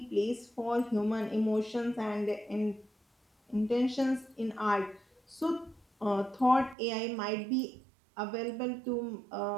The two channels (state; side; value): drops out; left; at 6.8 s